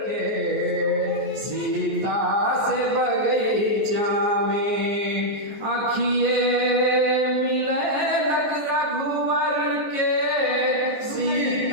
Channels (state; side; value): late; left; 14 ms